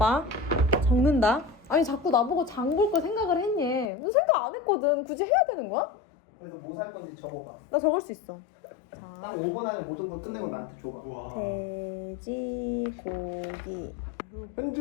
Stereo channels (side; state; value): right; drops out; at 3.9 s